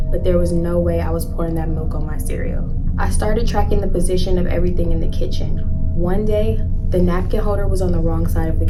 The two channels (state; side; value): identical; both; correlation 1.00